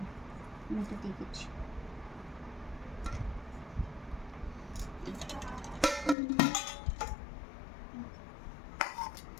আমি এটা দেখেছি।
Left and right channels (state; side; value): drops out; right; at 6.2 s